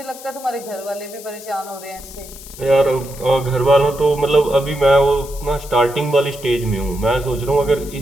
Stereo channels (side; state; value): left; noise; hiss, 16 dB below the sound